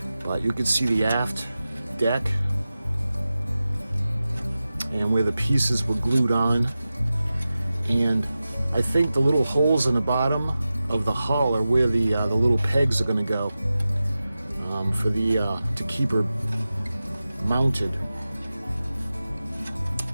But you can see the aft deck and where the pieces were glued on. And I think the little holes in the bottom of the hull are where the little pegs are going to go to keep her mounted.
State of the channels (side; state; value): both; inverted; correlation -0.94